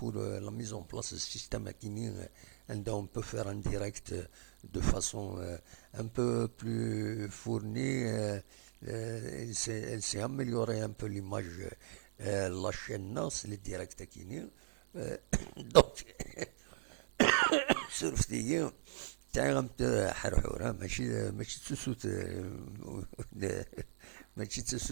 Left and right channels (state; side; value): quieter; left; 30.9 dB